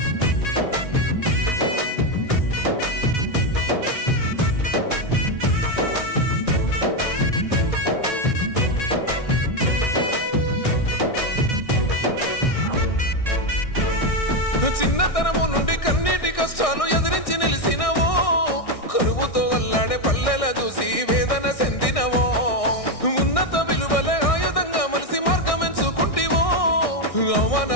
చిన్నతనము నుండి కన్నీటి కష్టాలు ఎదిరించి నిలిసినవో, కరువుతో అల్లాడే పల్లెల చూసి వేదన చెందినవో, ఉన్నత విలువలే ఆయుధంగా మలిసి మార్గం ఎంచుకుంటివో, అవమాన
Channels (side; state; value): right; late; 1.6 ms